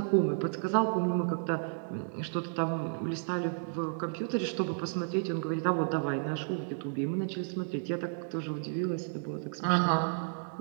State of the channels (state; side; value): silent; left; digital silence